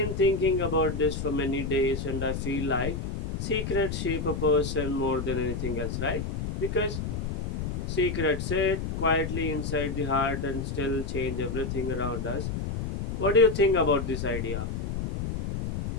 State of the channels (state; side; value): noise; left; rumble, 4 dB below the sound